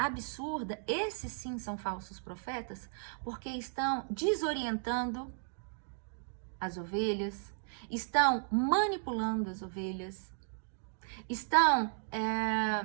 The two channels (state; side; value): silent; left; digital silence